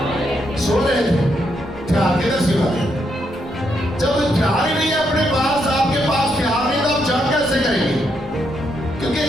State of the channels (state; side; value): normal; both; correlation 0.78